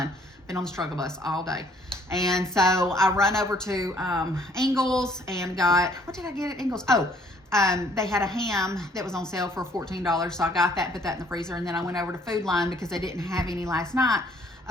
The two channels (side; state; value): both; normal; correlation 0.61